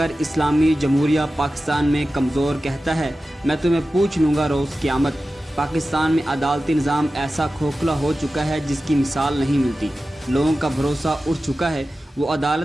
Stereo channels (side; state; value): both; normal; correlation 0.94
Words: اسلامی جمہوریہ پاکستان میں کمزور کہتا ہے میں تمہیں پوچھ لوں گا روز قیامت۔ پاکستان میں عدالتی نظام ایسا کھوکھلا ہو چکا ہے جس کی مثال نہیں ملتی۔ لوگوں کا بھروسہ اٹھ چکا ہے، وہ